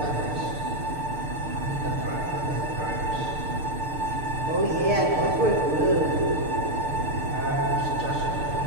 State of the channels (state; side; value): late; left; 6.7 ms